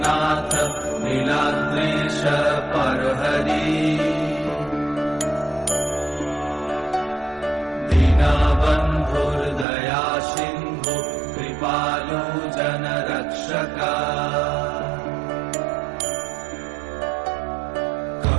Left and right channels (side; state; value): left; drops out; at 9.7 s